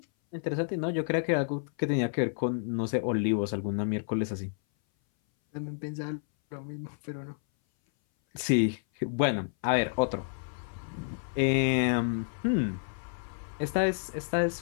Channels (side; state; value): right; silent; 58 dB below the other